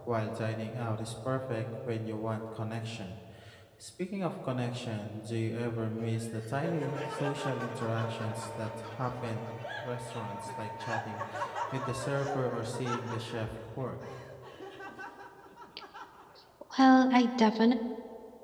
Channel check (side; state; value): both; identical; correlation 1.00